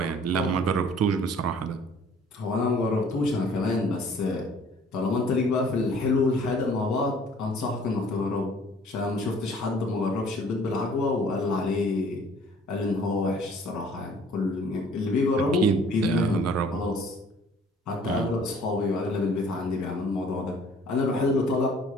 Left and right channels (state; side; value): normal; both; correlation 0.54